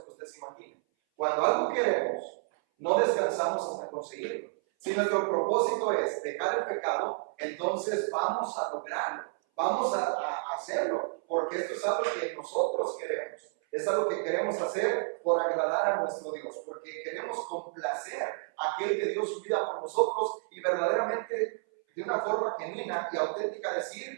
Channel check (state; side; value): silent; left; 57 dB below the other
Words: que usted se imagine. Cuando algo queremos, no descansamos hasta conseguirlo. Si nuestro propósito es dejar el pecado, entonces vamos a lograrlo, vamos a hacerlo, porque esto es algo que nosotros queremos. Es algo que queremos hacer por agradar a nuestro Dios, porque queremos complacer a aquel que dio su vida por nosotros y verdaderamente de una forma genuina y auténtica